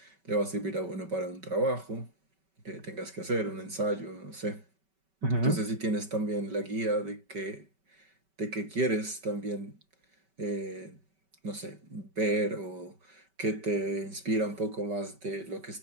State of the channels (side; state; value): left; late; 5.2 ms